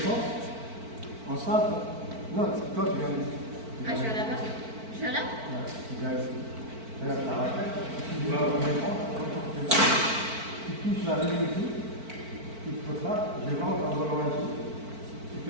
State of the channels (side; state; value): left; late; 4.5 ms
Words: En simple. Non, toi tu viens ici. Ah, je viens là-bas. Je viens là? Ouais, tu viens ici. Regarde, ça va faire. Tu vas au défense. Tu touches la ligne ici. Tu te poses là. Je rentre un volant ici. Tu